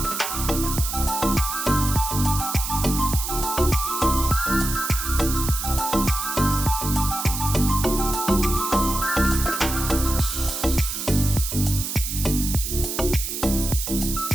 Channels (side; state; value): right; noise; hiss, 4 dB below the sound